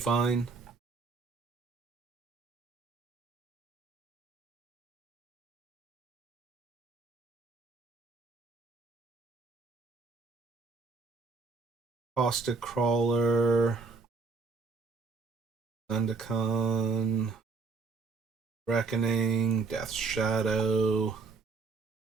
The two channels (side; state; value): left; quieter; 4.3 dB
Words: Caustic Crawler, Zendikon, Reckoning, Death's Shadow,